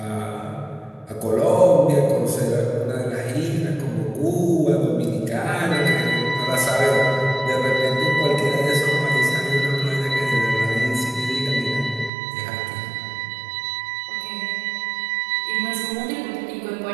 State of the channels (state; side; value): drops out; left; at 12.1 s